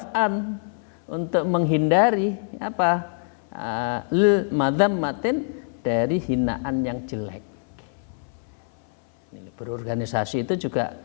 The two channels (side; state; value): right; silent; 62 dB below the other